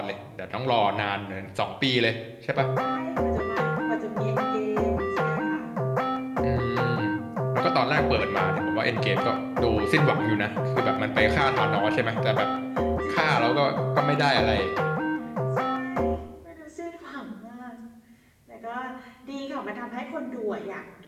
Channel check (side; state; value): both; identical; correlation 1.00